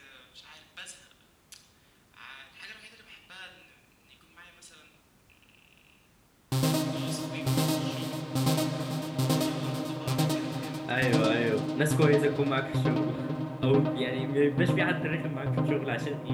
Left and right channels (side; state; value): both; identical; correlation 1.00